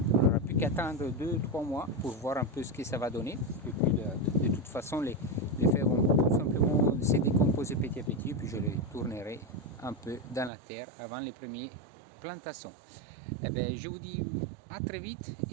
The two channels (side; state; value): left; drops out; at 10.5 s